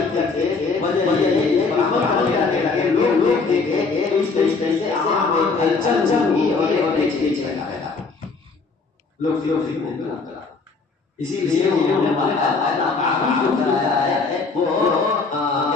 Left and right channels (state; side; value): quieter; right; 4.3 dB